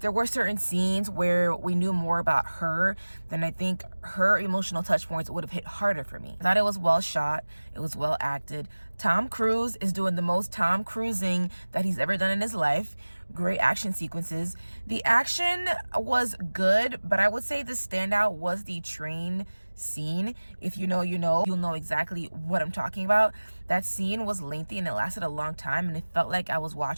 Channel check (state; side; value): inverted; both; correlation -1.00